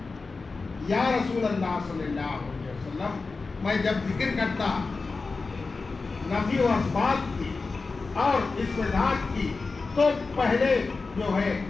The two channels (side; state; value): right; quieter; 4.1 dB